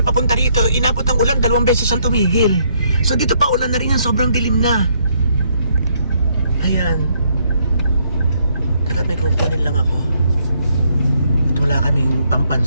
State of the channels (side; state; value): both; inverted; correlation -0.71